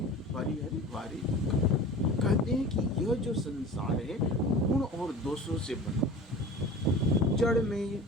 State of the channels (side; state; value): both; normal; correlation 0.37